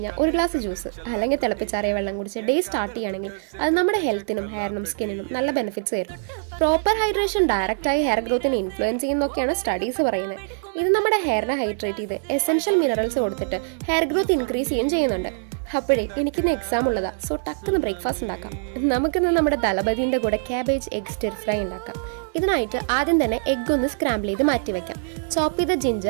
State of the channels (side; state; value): left; silent; digital silence